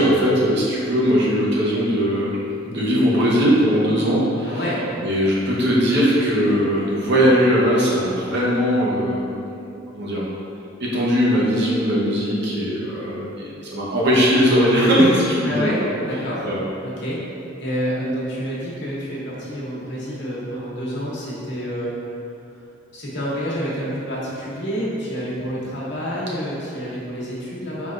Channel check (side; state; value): both; normal; correlation 0.53